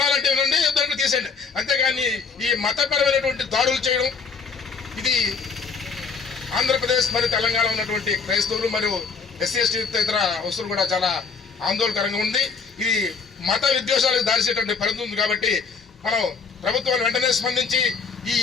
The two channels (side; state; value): right; quieter; 5.2 dB